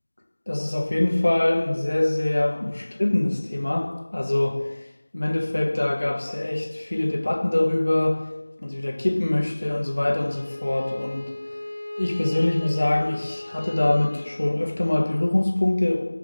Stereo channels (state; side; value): inverted; both; correlation -1.00